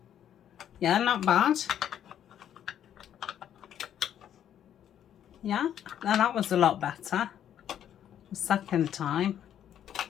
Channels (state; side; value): quieter; right; 10.1 dB